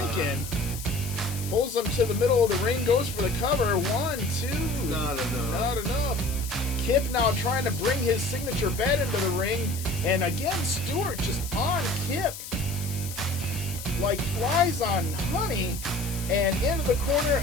thinking. Pulls him to the middle of the ring, goes for the cover. 1, 2. Not enough. Not enough. Kip now trying to bring his signature bed into the ring. And again, Stewart just on Kip. Like flies on honey. And into the corner,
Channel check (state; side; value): noise; left; hiss, 11 dB below the sound